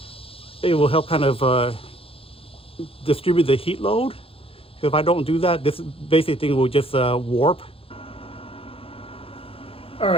it will help kind of distribute the heat load. If I don't do that, this basic thing will just warp. All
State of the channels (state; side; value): late; right; 0.27 ms